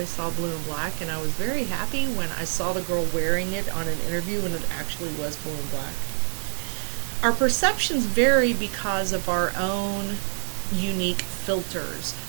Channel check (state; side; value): silent; left; digital silence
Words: saw blue and black, and I was very happy when I saw the girl wearing it on an interview and it actually was blue and black. Our perceptions vary because of our own unique filters,